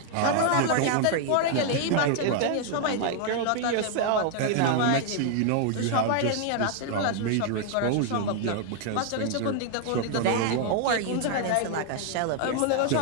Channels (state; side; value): different; both; correlation 0.00